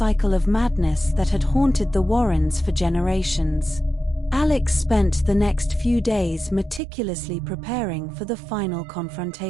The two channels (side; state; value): left; drops out; at 6.8 s